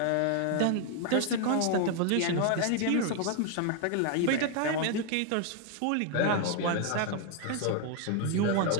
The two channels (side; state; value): both; different; correlation 0.00